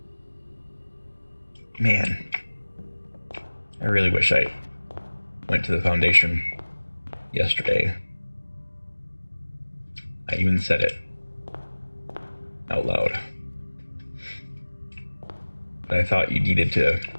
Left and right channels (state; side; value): inverted; both; correlation -1.00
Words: Man, I really wish I went to the foundation yesterday. I even said it out loud. But I thought you needed to